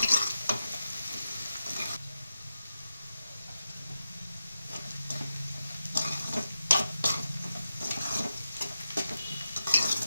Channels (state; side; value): inverted; both; correlation -0.90